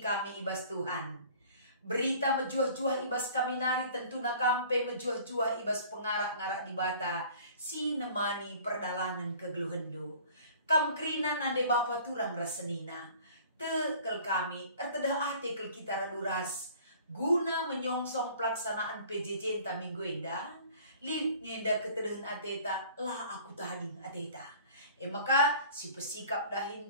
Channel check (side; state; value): both; inverted; correlation -0.49